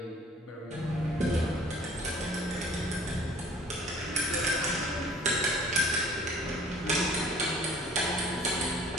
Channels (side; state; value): both; normal; correlation 0.52